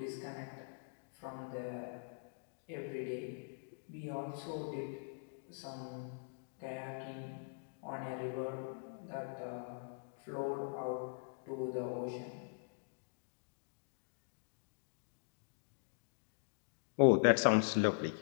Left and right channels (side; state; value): right; silent; digital silence